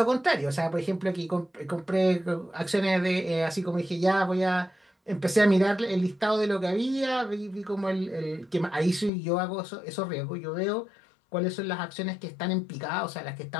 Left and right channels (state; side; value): drops out; right; at 9.1 s